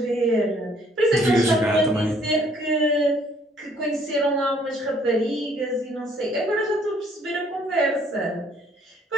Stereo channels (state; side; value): normal; both; correlation 0.63